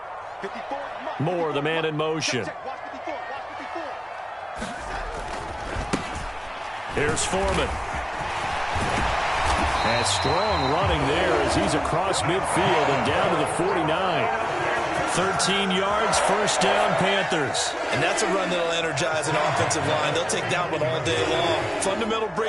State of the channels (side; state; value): both; identical; correlation 1.00